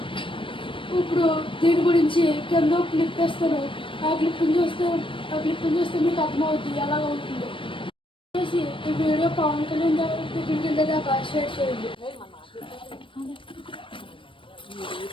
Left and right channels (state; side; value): late; right; 0.25 ms